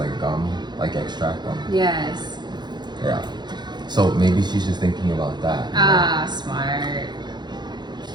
gum, like extract gum. Yes. Yeah. So maybe she's just thinking about that. Ah, smart.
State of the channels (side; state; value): left; late; 0.21 ms